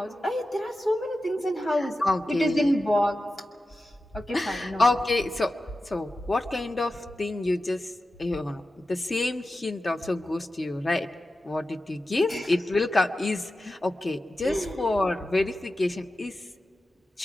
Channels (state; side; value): normal; both; correlation 0.93